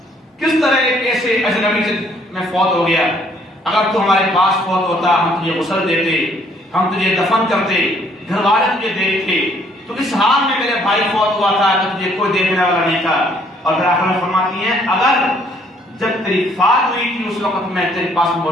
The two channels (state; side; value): normal; both; correlation 0.64